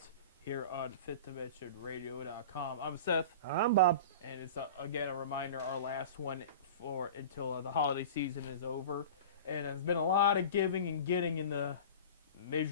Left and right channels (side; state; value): both; inverted; correlation -0.35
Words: here on FitDimensionRadio.com. I'm Seth. I'm Bob. And it's, again, a reminder, our last one until the holiday season is over. And there's been a lot of giving and getting in the